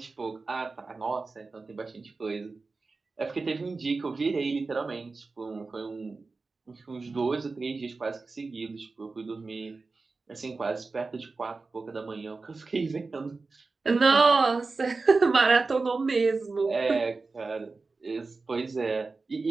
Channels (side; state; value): left; quieter; 3.9 dB